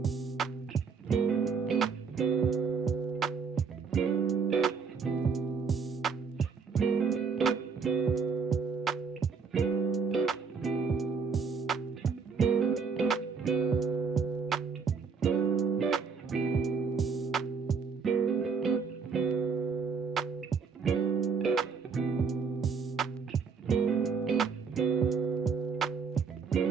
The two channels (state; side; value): quieter; left; 5.6 dB